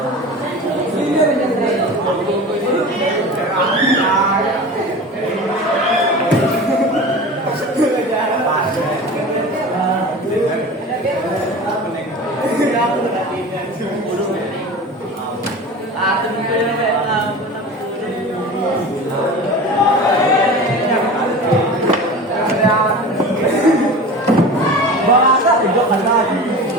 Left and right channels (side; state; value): both; normal; correlation 0.34